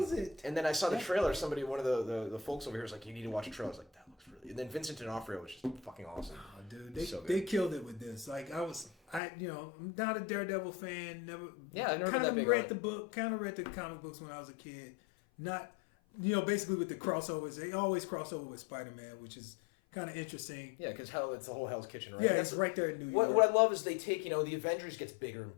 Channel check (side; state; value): right; drops out; at 9.2 s